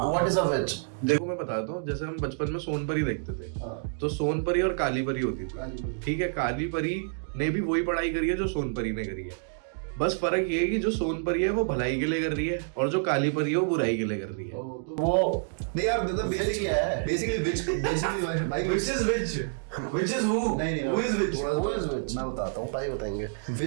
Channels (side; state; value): left; silent; digital silence